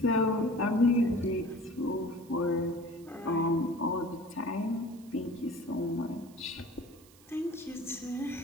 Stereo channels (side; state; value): right; noise; hiss, 25 dB below the sound